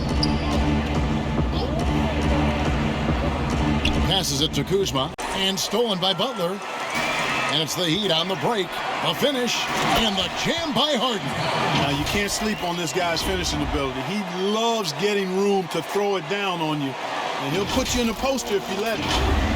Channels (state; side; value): identical; both; correlation 1.00